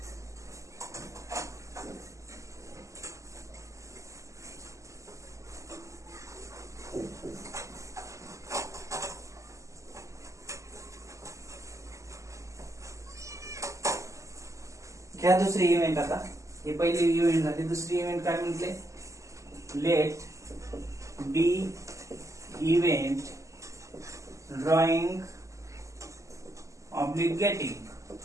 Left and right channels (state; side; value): late; left; 0.15 ms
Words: घ्या दुसरी इव्हेंट. आता हे पहिली इव्हेंट झाली. दुसरी इव्हेंट काय म्हटले? Late B event drawing oblique